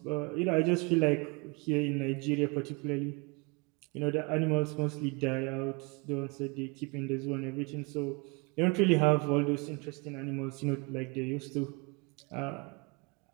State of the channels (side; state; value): left; quieter; 29.4 dB